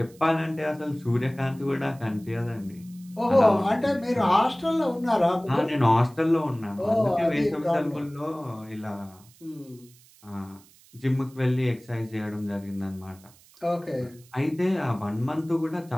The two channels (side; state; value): right; noise; hiss, 26 dB below the sound